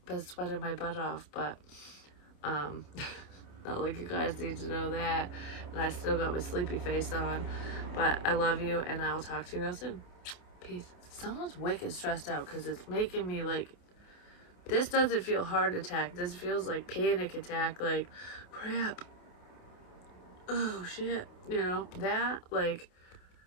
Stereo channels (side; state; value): right; late; 28 ms